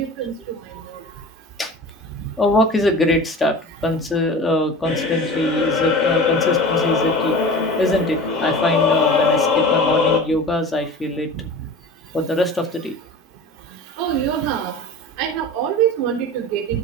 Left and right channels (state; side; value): normal; both; correlation 0.36